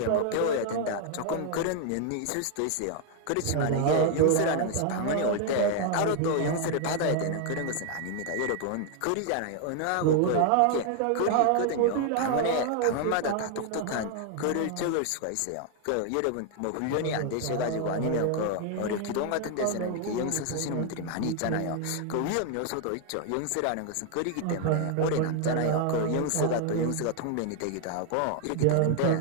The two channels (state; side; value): different; both; correlation 0.00